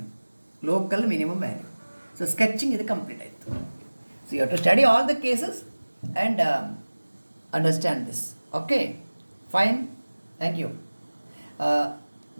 local minimum value. So sketching ಇದು ಕಂಪ್ಲೀಟ್ ಆಯಿತು. So you have to study all the cases and understand this. Okay, fine, thank you.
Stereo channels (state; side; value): inverted; both; correlation -1.00